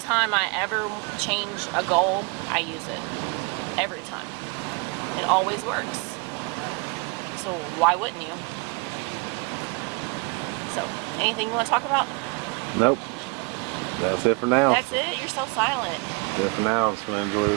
I ever change a goal, I use it. Every time. It always works. So why wouldn't you? So, anything you want to talk about? Nope. That's it for now. That's it? You're so silent. That's it for now. I'm just going to enjoy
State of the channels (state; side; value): quieter; left; 29.6 dB